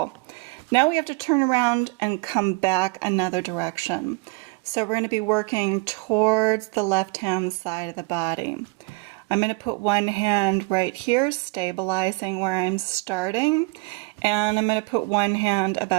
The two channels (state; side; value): quieter; left; 29.5 dB